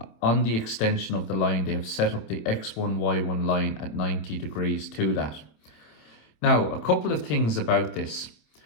on the extension of the line, they have set up the x1, y1 line at 90 degrees to that. Now, a couple of things about this.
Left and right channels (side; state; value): right; late; 26 ms